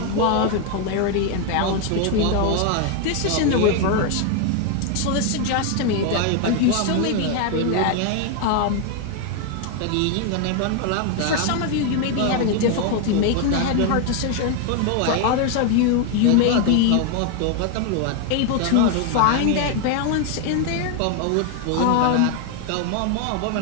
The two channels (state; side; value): different; both; correlation 0.01